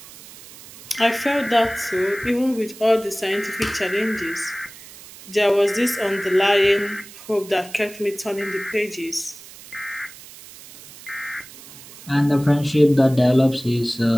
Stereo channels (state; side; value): noise; right; hiss, 18 dB below the sound